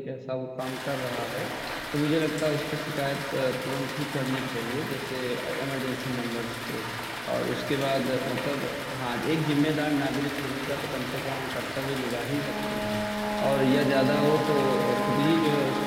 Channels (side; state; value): both; identical; correlation 1.00